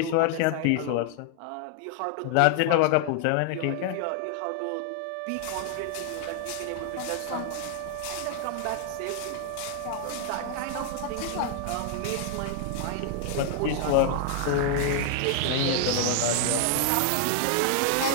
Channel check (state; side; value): different; both; correlation 0.00